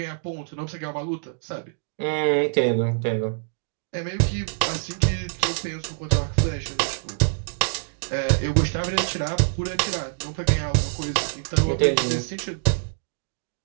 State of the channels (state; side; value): silent; left; digital silence